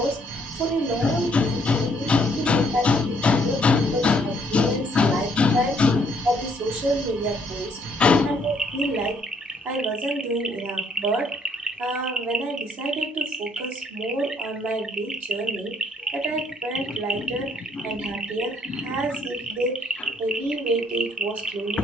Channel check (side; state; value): both; normal; correlation 0.67